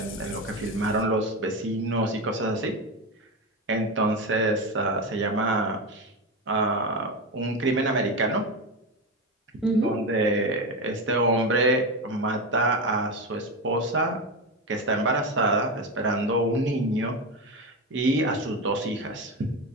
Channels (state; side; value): normal; both; correlation 0.17